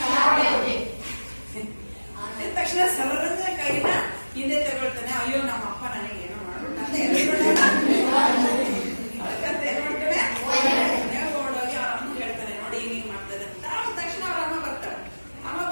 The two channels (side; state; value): both; inverted; correlation -1.00